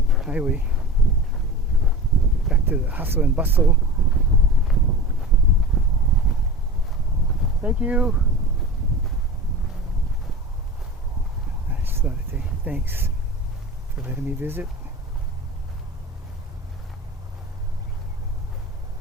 highway, back to the hustle and bustle. Thank you. I just thought I'd say thanks for letting me visit.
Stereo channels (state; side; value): normal; both; correlation 0.33